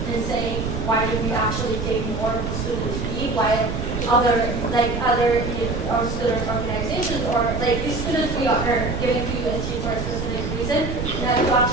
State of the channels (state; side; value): noise; right; rumble, 3 dB below the sound